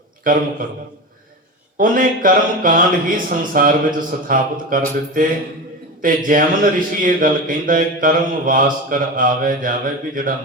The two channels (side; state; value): both; normal; correlation 0.25